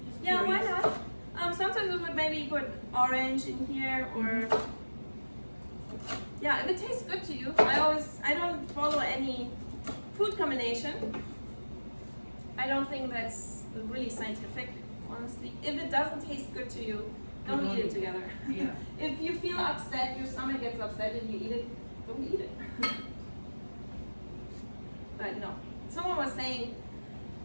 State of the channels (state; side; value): inverted; both; correlation -1.00